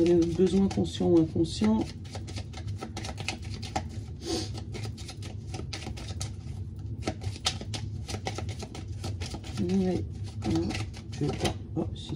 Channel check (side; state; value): both; identical; correlation 1.00